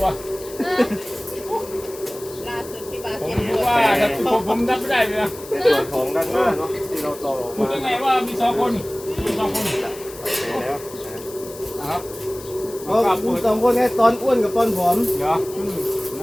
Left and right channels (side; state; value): left; noise; hiss, 16 dB below the sound